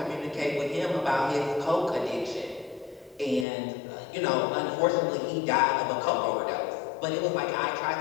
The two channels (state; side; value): drops out; right; at 3.5 s